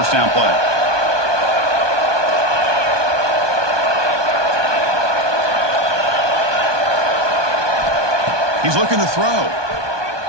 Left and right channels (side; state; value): left; late; 1.2 ms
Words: down play. He's looking to throw.